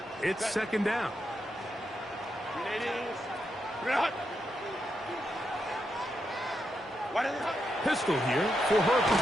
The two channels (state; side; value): normal; both; correlation 0.83